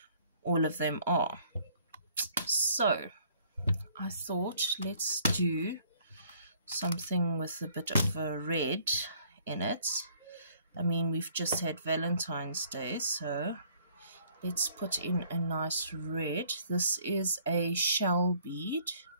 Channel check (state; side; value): inverted; both; correlation -0.60